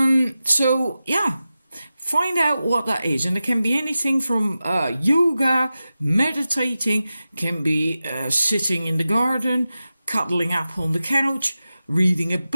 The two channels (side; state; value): both; inverted; correlation -0.94